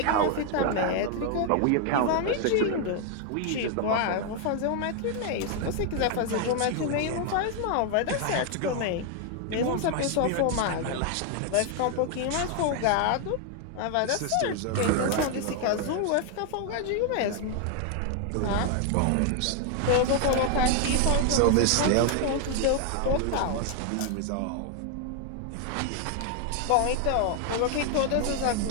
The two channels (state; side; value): different; both; correlation 0.00